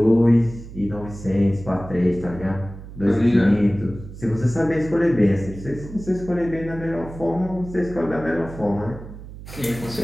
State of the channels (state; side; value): noise; right; hum, 14 dB below the sound